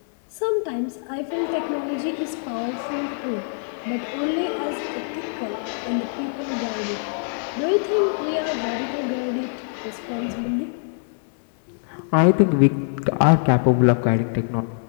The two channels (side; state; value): right; silent; digital silence